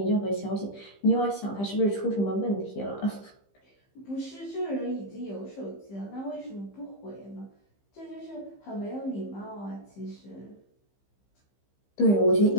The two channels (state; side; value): late; right; 15 ms